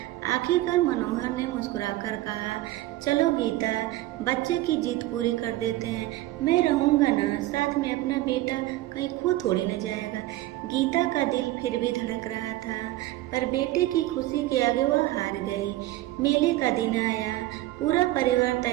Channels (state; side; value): quieter; left; 16.6 dB